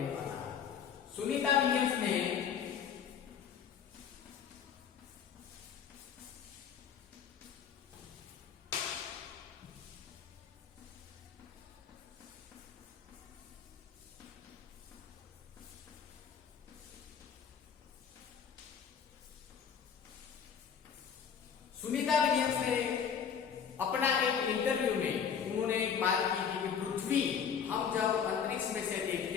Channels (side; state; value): right; quieter; 7.5 dB